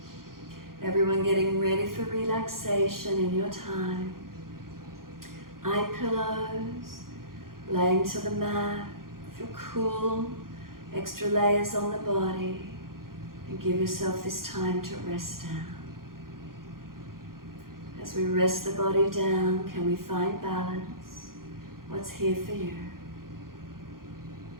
Everyone getting ready for relaxation in your time. Eye pillows, laying to the mat, feel cool, extra layers on the body, and give yourself this time to rest out. As we rest the body down, can we find balance? What's here for you?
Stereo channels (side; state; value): left; late; 0.92 ms